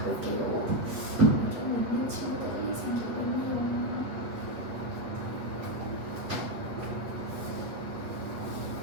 좀 있는 친구들이 생기군요.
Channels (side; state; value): left; late; 8.3 ms